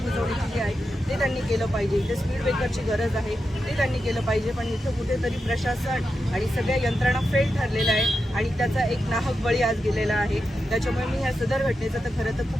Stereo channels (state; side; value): normal; both; correlation 0.88